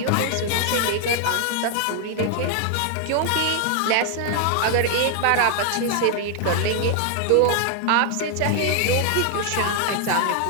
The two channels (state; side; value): different; both; correlation 0.00